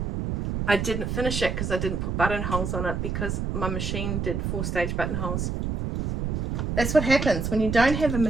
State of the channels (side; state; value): right; noise; rumble, 2 dB below the sound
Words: I didn't finish it because I didn't put buttonholes on it because my machine did 4-stage buttonholes. That's what happens when you don't have a